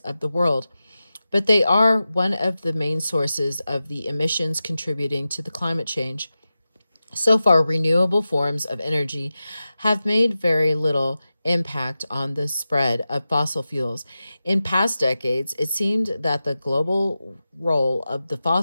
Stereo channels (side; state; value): both; inverted; correlation -0.93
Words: the world, but they are one of the main sources of the emissions contributing to the climate change. So far, renewable forms of energy have made very little impact on the spread of fossil fuels. In past decades, it seemed that the global role of the